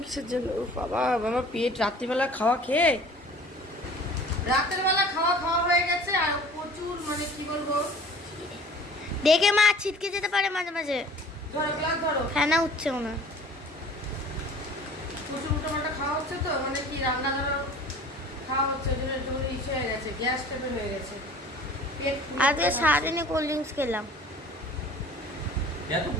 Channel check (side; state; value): both; normal; correlation 0.47